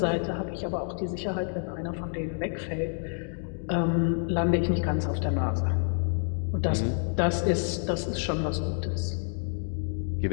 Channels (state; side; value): silent; right; 59 dB below the other